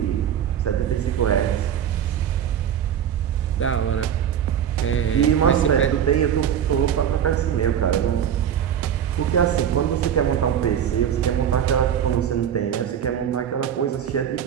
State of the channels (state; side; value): quieter; left; 9.2 dB